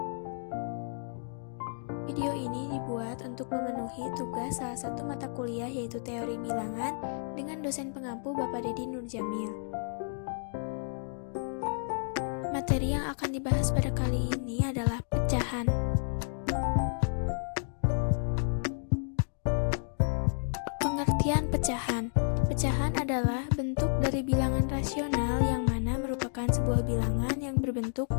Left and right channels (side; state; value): right; silent; digital silence